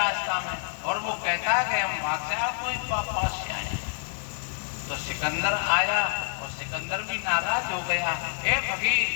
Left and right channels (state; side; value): silent; right; digital silence